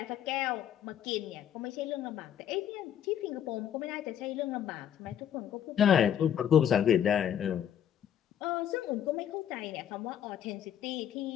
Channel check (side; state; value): right; quieter; 9.7 dB